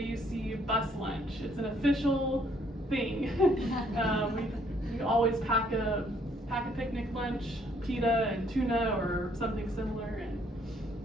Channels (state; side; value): normal; both; correlation 0.66